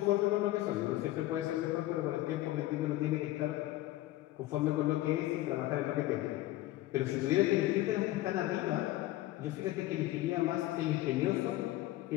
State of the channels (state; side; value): quieter; right; 16.2 dB